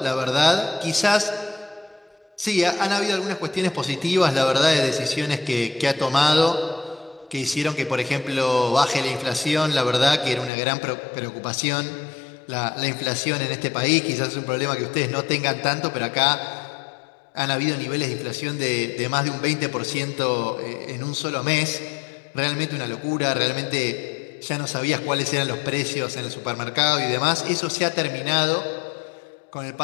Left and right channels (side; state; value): right; drops out; at 10.5 s